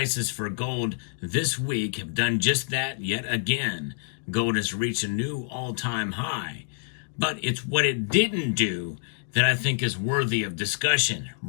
for gold this week have done just that yet again. Gold has reached a new all-time high. But it's what it didn't do that I think is worthy of discussion.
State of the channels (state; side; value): silent; right; digital silence